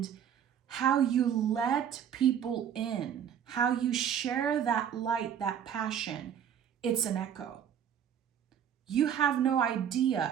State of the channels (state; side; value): quieter; left; 8.9 dB